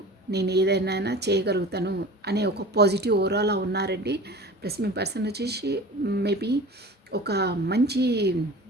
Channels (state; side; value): normal; both; correlation 0.38